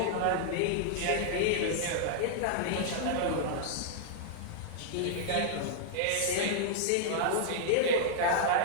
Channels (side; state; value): both; different; correlation -0.01